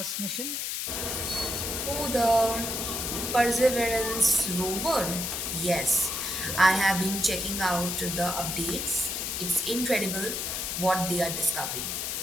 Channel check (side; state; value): left; noise; hiss, 2 dB below the sound